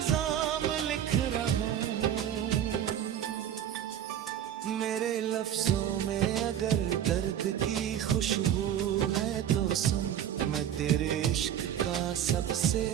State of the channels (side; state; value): left; quieter; 10.2 dB